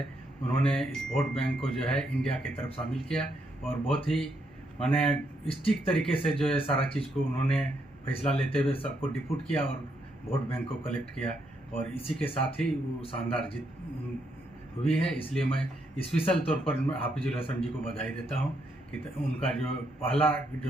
उन्होंने इस वोट बैंक को जो है इंडिया की तरफ शामिल किया और बहुत ही मैंने स्टिक तरीके से जो है सारा चीज़ को उन्होंने फैसला लेते हुए सबको डिप्यूट किया और वोट बैंक को कलेक्ट किया और इसी के साथ ही वो शानदार जीत हुई है। इसलिए मैं स्पेशल तौर पर हाफिजुल हसन जी को बधाई देता हूँ कि उनका जो पहला जो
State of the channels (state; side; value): normal; both; correlation 0.77